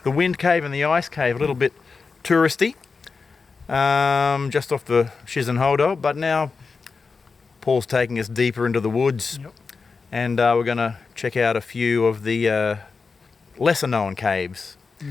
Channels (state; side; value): quieter; right; 4.7 dB